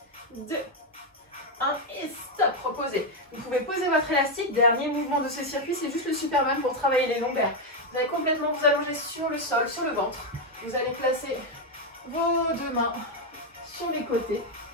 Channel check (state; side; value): normal; both; correlation 0.04